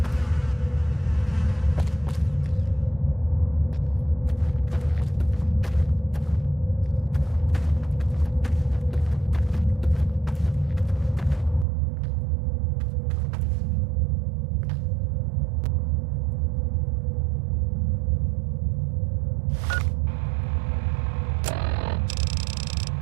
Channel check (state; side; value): drops out; left; at 11.7 s